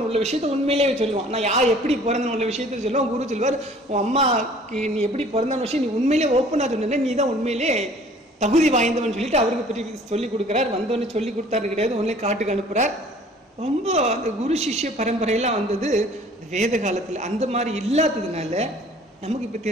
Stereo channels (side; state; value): both; normal; correlation 0.52